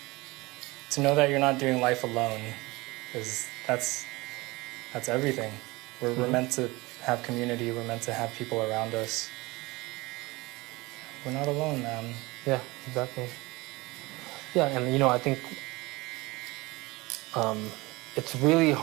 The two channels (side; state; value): left; quieter; 22.5 dB